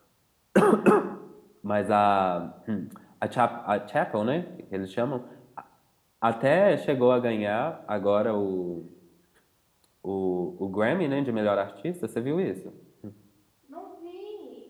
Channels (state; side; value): identical; both; correlation 1.00